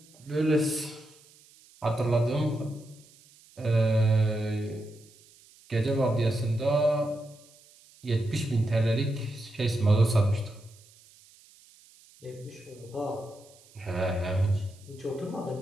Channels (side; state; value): right; noise; hiss, 26 dB below the sound